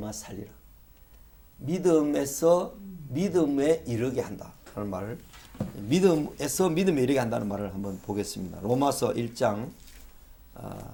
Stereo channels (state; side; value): identical; both; correlation 1.00